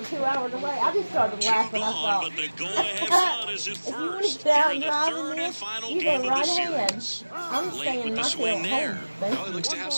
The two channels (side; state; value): both; inverted; correlation -1.00